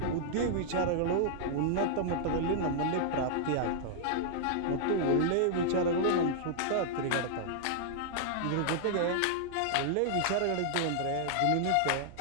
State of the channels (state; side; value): different; both; correlation -0.01